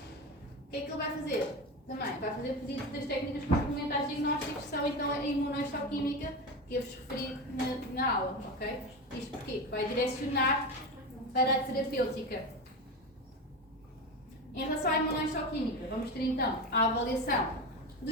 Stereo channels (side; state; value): both; normal; correlation 0.22